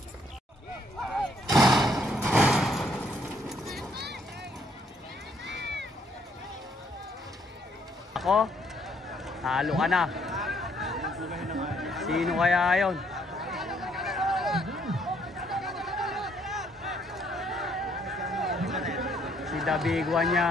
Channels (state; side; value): normal; both; correlation 0.68